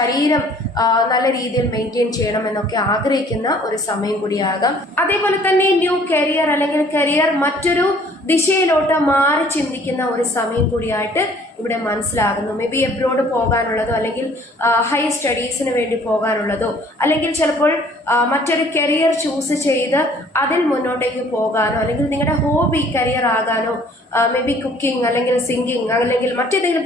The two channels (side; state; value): both; normal; correlation 0.56